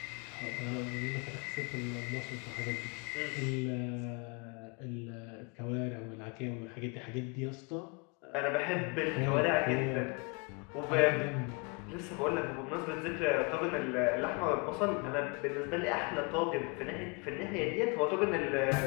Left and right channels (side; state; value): right; quieter; 31.7 dB